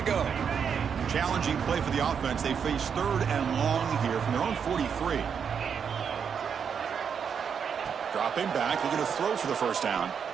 go. Challenging play for the offense. They face 3rd and long here from their own 43. Dropping back. Looking to throw for the 1st down.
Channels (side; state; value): left; quieter; 7.0 dB